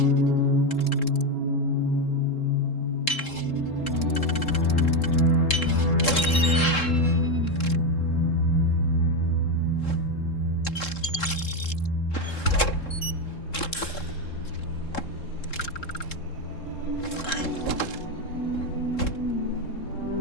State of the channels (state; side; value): late; right; 3.7 ms